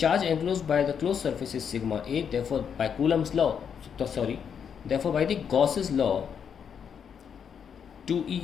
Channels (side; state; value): right; quieter; 7.5 dB